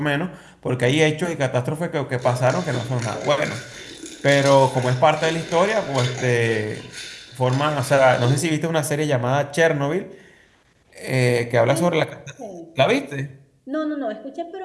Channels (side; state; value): both; identical; correlation 1.00